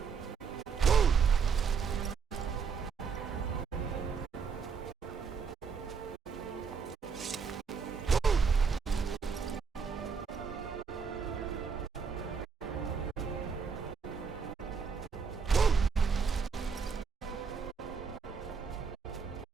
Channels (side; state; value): left; quieter; 5.8 dB